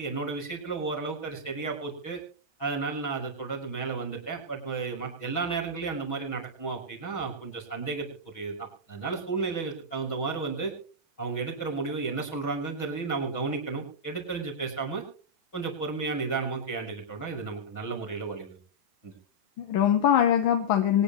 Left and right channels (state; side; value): late; right; 6.2 ms